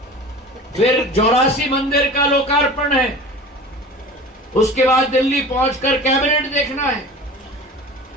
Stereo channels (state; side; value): normal; both; correlation 0.37